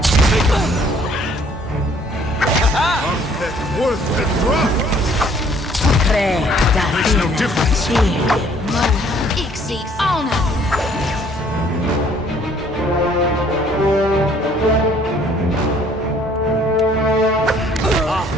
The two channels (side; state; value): both; normal; correlation 0.60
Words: Worth the drop! Makes no difference. Ixi honor.